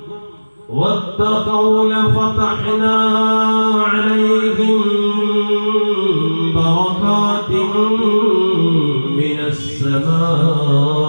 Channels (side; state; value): both; inverted; correlation -1.00